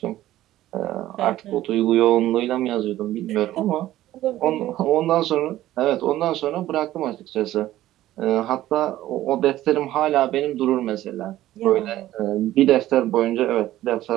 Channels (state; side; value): quieter; left; 14.5 dB